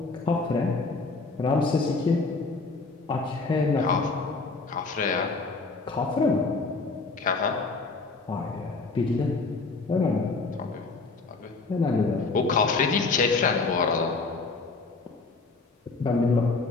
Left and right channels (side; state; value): right; quieter; 3.9 dB